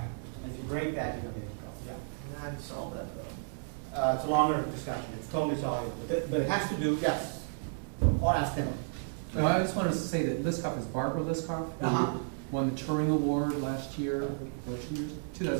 And if you break that, you're going to get in trouble. Yeah. And how do you solve that though? It's a longer discussion. It's totally soluble. But it has to do, yes. Or ask Tim. No, I just wanted to say that Liskov is Barbara Liskov, who Uh-huh. won the Turing Award last year,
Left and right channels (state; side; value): silent; left; digital silence